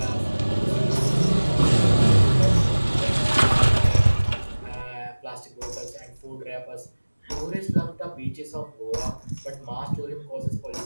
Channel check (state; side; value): inverted; both; correlation -1.00